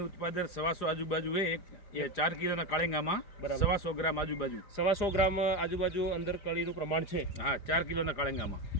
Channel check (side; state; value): right; late; 4.9 ms